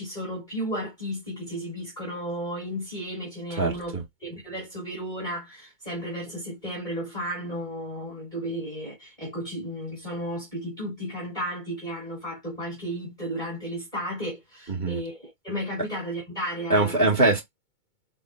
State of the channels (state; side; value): late; right; 2.2 ms